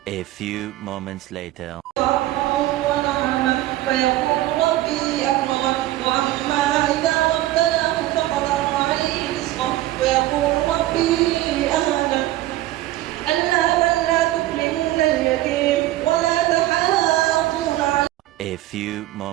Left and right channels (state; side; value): quieter; left; 15.6 dB